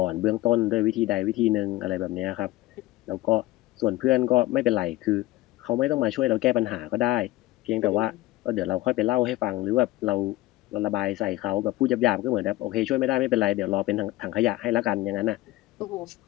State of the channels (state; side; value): quieter; right; 17.7 dB